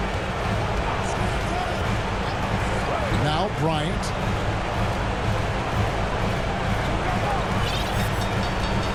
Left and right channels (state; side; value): identical; both; correlation 1.00